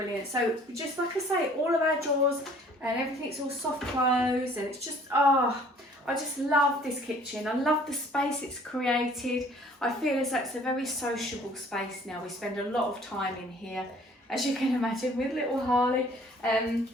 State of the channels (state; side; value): normal; both; correlation 0.55